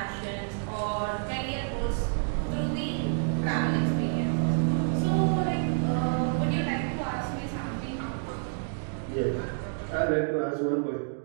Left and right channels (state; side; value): silent; left; digital silence